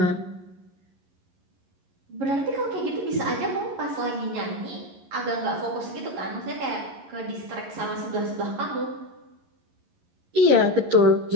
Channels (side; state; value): left; late; 11 ms